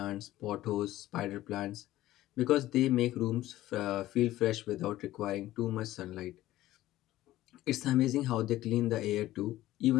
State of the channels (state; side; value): quieter; right; 15.4 dB